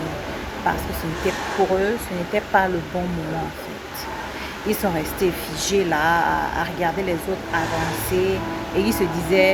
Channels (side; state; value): both; identical; correlation 1.00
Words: Parce que ce n'était pour eux, ce n'était pas le bon moment en fait. Ils sont restés figés là, à regarder les autres avancer et ils se